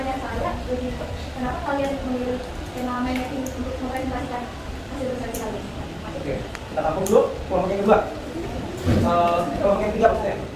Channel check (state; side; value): identical; both; correlation 1.00